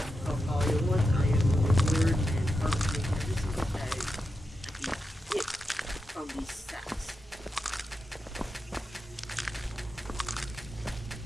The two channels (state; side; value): normal; both; correlation 0.88